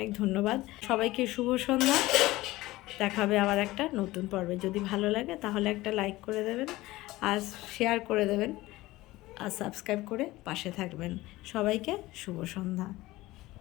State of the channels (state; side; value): quieter; right; 18.5 dB